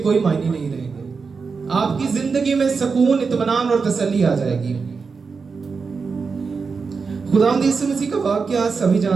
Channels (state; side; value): quieter; left; 5.0 dB